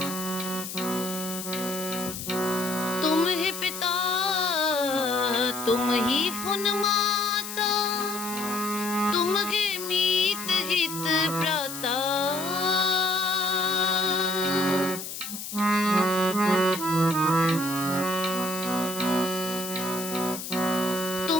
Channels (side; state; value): left; noise; hiss, 8 dB below the sound